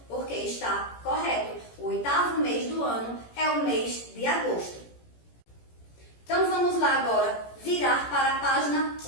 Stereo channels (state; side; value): late; right; 17 ms